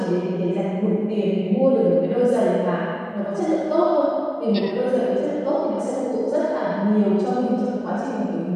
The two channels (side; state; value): both; identical; correlation 1.00